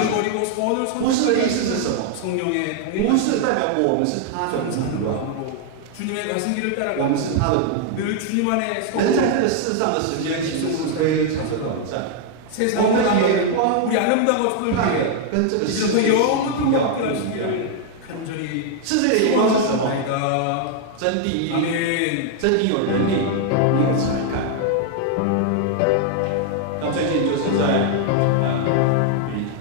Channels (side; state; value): both; different; correlation 0.00